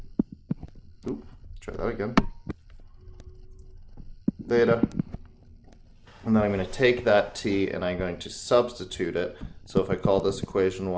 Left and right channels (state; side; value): identical; both; correlation 1.00